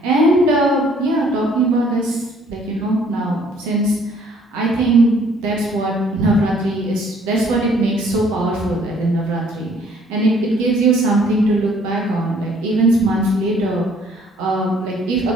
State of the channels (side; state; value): both; normal; correlation 0.60